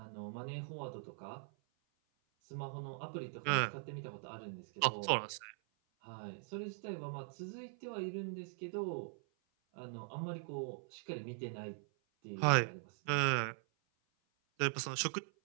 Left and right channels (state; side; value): silent; left; 50 dB below the other